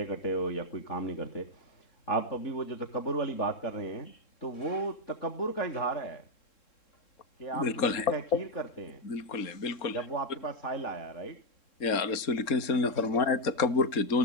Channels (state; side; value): late; right; 3.7 ms